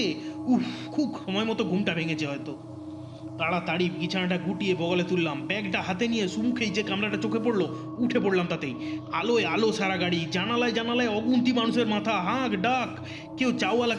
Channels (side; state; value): both; identical; correlation 1.00